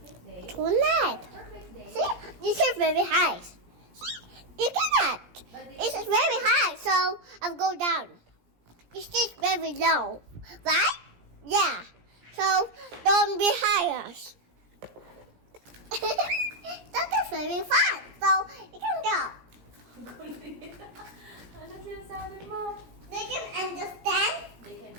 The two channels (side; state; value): left; late; 17 ms